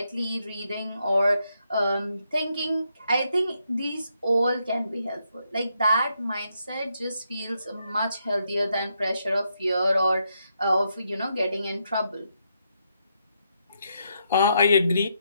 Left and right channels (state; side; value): inverted; both; correlation -0.79